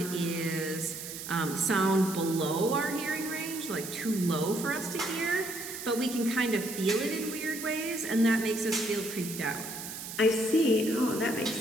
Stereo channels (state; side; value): noise; right; hiss, 9 dB below the sound